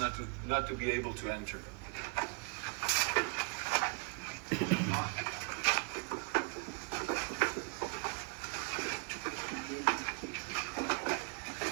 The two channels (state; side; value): quieter; left; 36.4 dB